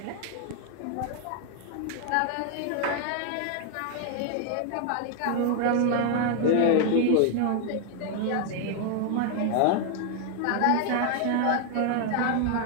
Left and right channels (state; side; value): different; both; correlation 0.00